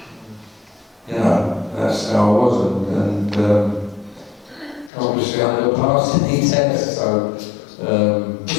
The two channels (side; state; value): right; drops out; at 4.9 s